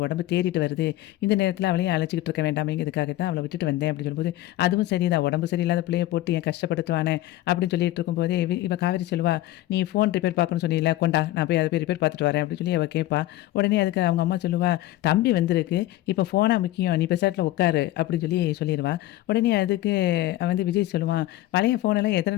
உடம்பு தேறிட்டு வருது. இந்த நேரத்தில அவளையும் அழைச்சுக்கிட்டு இருக்க வேண்டாமேங்கிறதுக்காக தான் அவள விட்டுட்டு வந்தேன்" அப்படின்னு சொல்லும்போது, "அதுவும் சரிதான். உடம்பு சரியில்லாத பிள்ளைய போட்டு ஏன் கஷ்டப்படுத்துவானே" அப்படின்னு சொல்லிட்டு இருக்கும்போதே, இவ காவேரி சொல்லுவா, "நீ ஃபோன் ரிப்பேர் பார்க்கணும்னு சொன்னீல்ல, கொண்டா நான் போய் அத போய் ரிப்பேர் பார்த்துட்டு வரேன்" அப்படின்னு சொல்லி அவ கேட்பா. உடனே அதுக்கு அவங்க அம்மா சொல்லுவா, "தம்பி வந்திருக்கு. இப்ப ஃபோனா முக்கியம். நீ பெசாட்ல உட்காரு" அப்படின்னு சொல்லி சொல்லிருவா. உடனே அதுக்கு வந்து விஜய் சொல்லுவான், "பழைய ஃபோனெல்லாம் எத்தன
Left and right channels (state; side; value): quieter; right; 15.7 dB